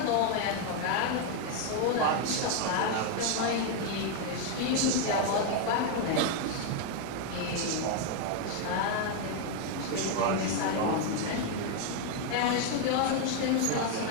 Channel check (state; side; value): different; both; correlation 0.01